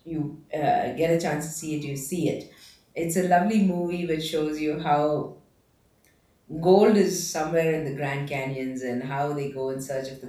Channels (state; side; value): identical; both; correlation 1.00